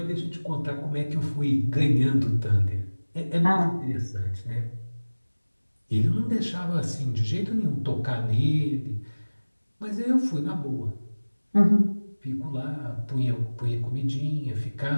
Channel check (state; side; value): inverted; both; correlation -1.00